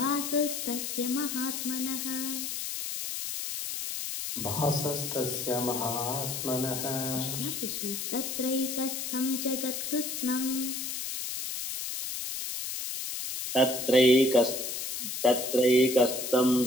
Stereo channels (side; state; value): left; noise; hiss, 4 dB below the sound